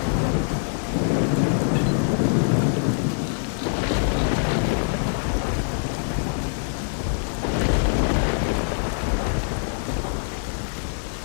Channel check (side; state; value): right; silent; 63 dB below the other